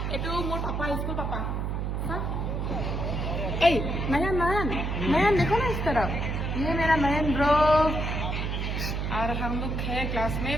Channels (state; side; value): noise; right; hum, 1 dB below the sound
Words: এইটো মোৰ পাপা স্কুল पापा ए नयन देखो ना इस तरफ ये मेरा नयन ब्रो और हम लोग है क्लास में